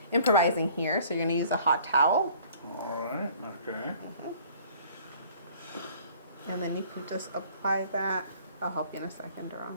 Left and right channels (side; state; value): both; inverted; correlation -0.53